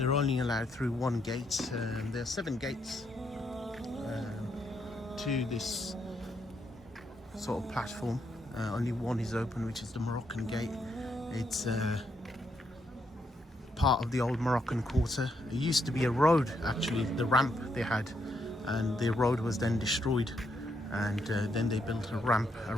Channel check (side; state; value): both; normal; correlation 0.77